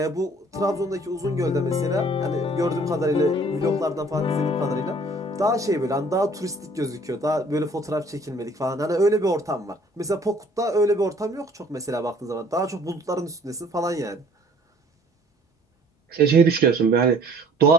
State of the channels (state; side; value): normal; both; correlation 0.56